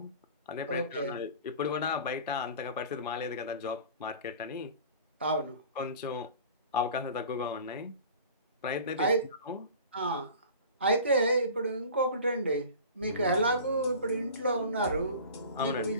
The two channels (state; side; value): inverted; both; correlation -0.40